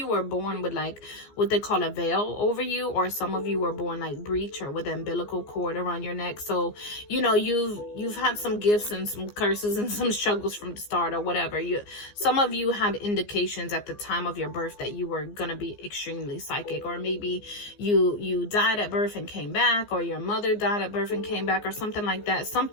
were born with like what they call a veil over you, or some of you were born like breech or with an umbilical cord around your neck. So, you know, you've had some gifts and some curses and some struggles from the start or whatever. Some of you had indications at the time of your birth that you were gonna be extremely psychic, or maybe you died at birth and came back, or your mother died at birth and came back, or something like that.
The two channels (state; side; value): late; right; 14 ms